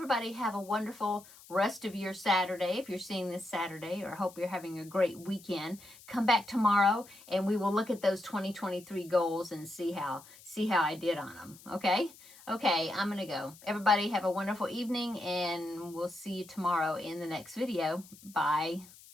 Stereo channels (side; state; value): left; noise; hiss, 21 dB below the sound